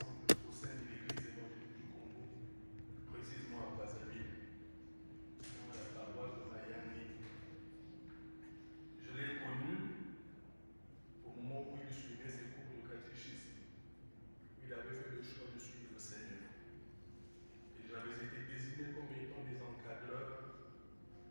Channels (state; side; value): inverted; both; correlation -1.00